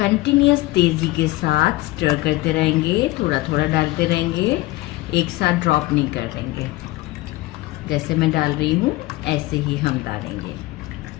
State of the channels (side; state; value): right; quieter; 19.2 dB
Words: तेज़ी के साथ स्टर करते रहेंगे, थोड़ा थोड़ा डालते रहेंगे, एक साथ ड्रॉप नहीं कर देंगे। जैसे मैं डाल रही हूँ ऐसे ही हम डालेंगे।